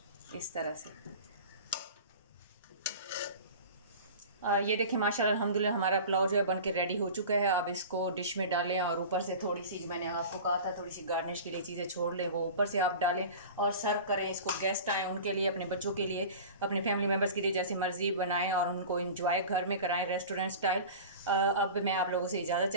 इस तरह से। ये देखिए माशाल्लाह अल्हम्दुलिल्लाह हमारा पुलाव जो है बनके रेडी हो चुका है। अब इसको डिश में डालें और ऊपर से थोड़ी सी, जो मैंने आपको कहा था थोड़ी सी गार्निश के लिए चीज़ें छोड़ लें, वो ऊपर से आप डालें और सर्व करें। इसको गेस्ट आएँ उनके लिए, अपने बच्चों के लिए, अपने फैमिली मेम्बर्स के लिए जैसे मर्जी बनाएं और उनको एंजॉय घर में कराएं रेस्टोरेंट स्टाइल। अब मैं आप लोगों से इजाज़त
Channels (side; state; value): both; inverted; correlation -0.36